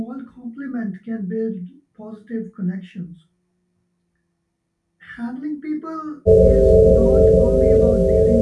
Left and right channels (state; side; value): identical; both; correlation 1.00